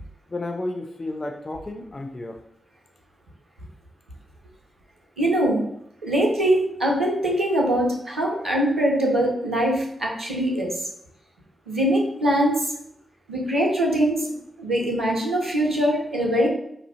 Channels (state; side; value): normal; both; correlation 0.71